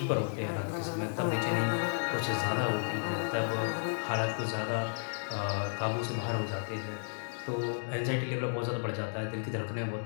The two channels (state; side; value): silent; right; digital silence